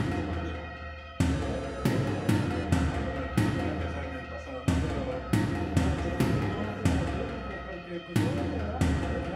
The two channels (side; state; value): both; identical; correlation 1.00